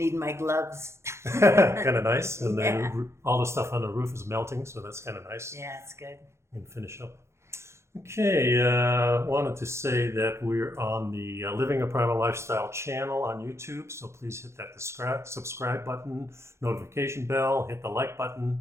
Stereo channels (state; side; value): late; left; 0.13 ms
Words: my gloves. Kind of nice. And then Yeah. all the stuff on the roof is melting, so that's kind of nice. Yeah, it's good. And finish up. Okay, wanted to say that we're on the Living a Primal Lifestyle channel on YouTube, so please hit that subscribe button, notification bell, hit the like